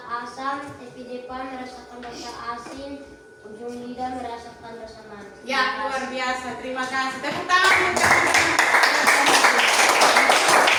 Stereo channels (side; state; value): both; identical; correlation 1.00